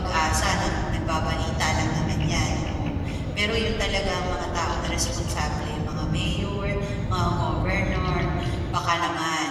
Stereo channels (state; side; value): identical; both; correlation 1.00